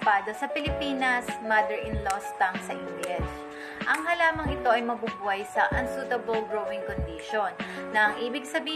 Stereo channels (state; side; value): identical; both; correlation 1.00